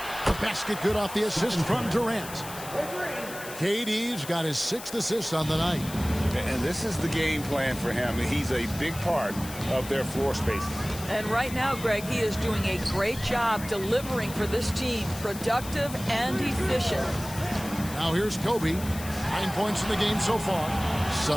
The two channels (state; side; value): noise; left; hiss, 13 dB below the sound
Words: basket good off the assist from Durant. KD's got his 6th assist on the night. And this is the game plan for him. He's a big part of their floor spacing. And right now, Greg, he is doing a great job delivering for this team, productive and efficient. Now here's Kobe, 9 points in the game so far.